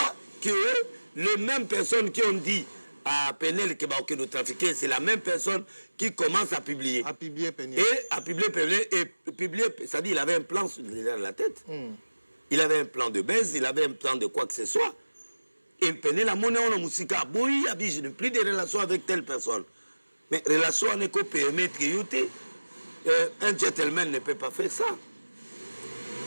que les mêmes personnes qui ont dit à Penel que va nous trafiquer, c'est la même personne qui commence à publier. À publier Penel. Et à publier Penel, et publier, c'est-à-dire il avait un plan derrière la tête. Il avait un plan de baisse, il avait un plan de quoi que ce soit. Et Penel a monnaie en musique, oui, je n'ai plus de relations avec telle personne. Mais relation n'est qu'au permettre que un gentleman ne peut pas faire ça.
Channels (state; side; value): inverted; both; correlation -1.00